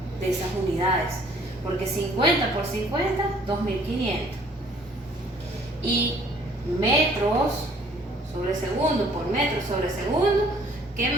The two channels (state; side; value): normal; both; correlation 0.58